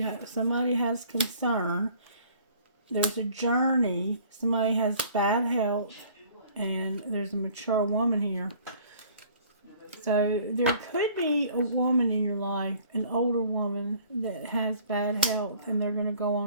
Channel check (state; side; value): inverted; both; correlation -0.54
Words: somebody has concern. There's a journey. Somebody has bad health. And there's a mature woman here. So there could be a woman in your life, an older woman that has bad health, and they're going to go